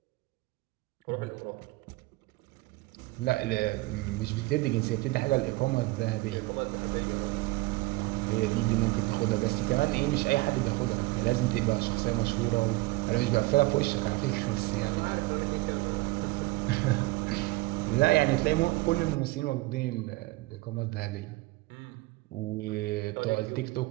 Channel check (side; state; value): left; quieter; 21.5 dB